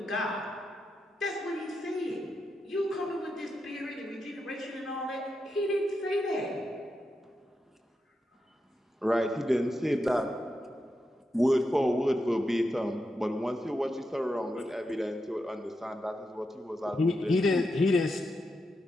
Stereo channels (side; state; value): both; normal; correlation 0.86